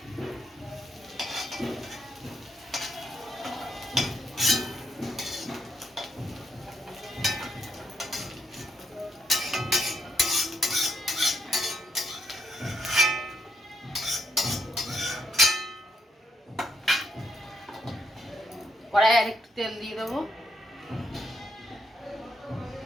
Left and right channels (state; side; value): normal; both; correlation 0.77